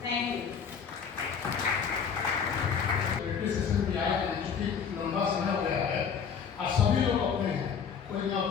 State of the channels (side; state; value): right; quieter; 6.7 dB